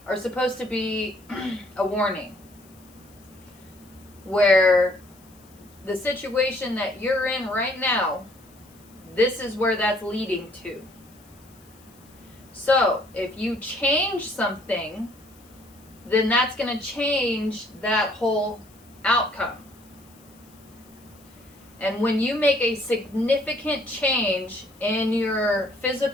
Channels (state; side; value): noise; left; hiss, 27 dB below the sound